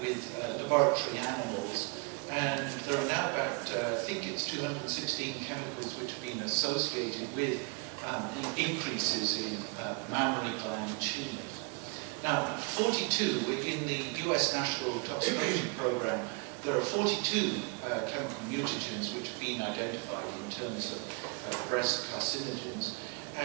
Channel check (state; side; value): quieter; left; 33.1 dB